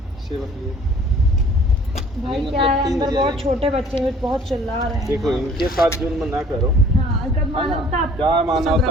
सेवा के लिए। भाई मतलब क्या है, 3 अंदर बजे बहुत आएंगे। छोटे बच्चे हैं, बहुत चिल्ला रहे हैं। देखो इनके साथ जुल्म ना करो। हाँ, अगर मानवता क्या मानवता सब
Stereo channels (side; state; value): both; normal; correlation 0.53